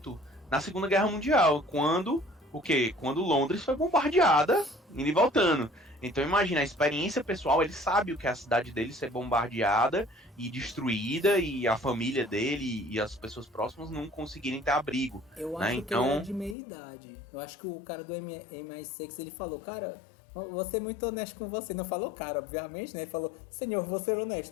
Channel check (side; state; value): right; drops out; at 16.6 s